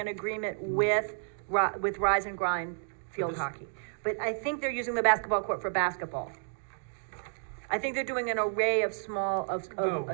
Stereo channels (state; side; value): silent; left; digital silence